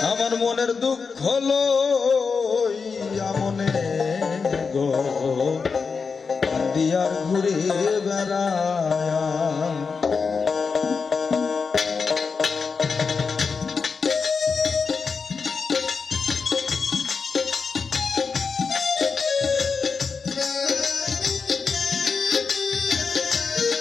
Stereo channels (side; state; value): right; quieter; 5.2 dB